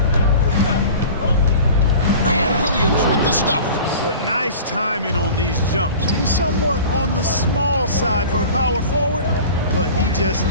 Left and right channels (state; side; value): inverted; both; correlation -0.40